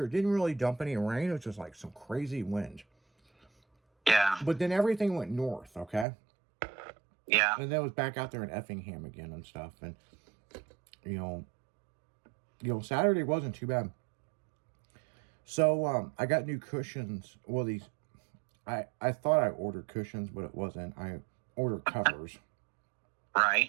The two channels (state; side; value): drops out; left; at 6.1 s